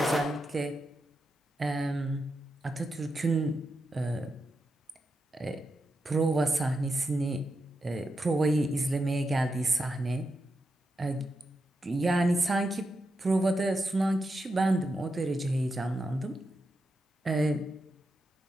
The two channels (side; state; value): both; normal; correlation 0.87